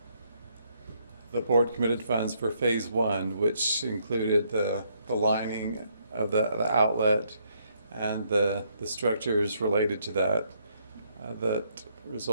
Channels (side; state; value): both; inverted; correlation -0.72